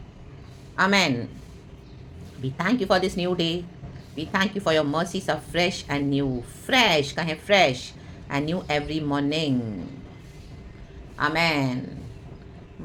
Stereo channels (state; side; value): identical; both; correlation 1.00